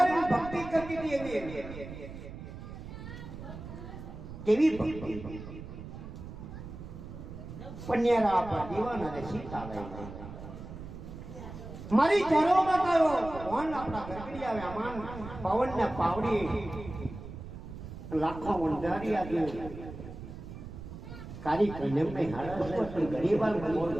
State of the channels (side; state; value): right; noise; rumble, 11 dB below the sound